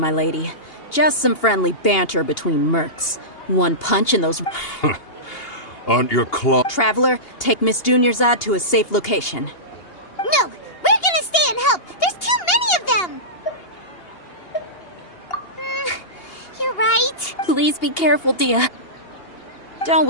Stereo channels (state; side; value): late; right; 2.8 ms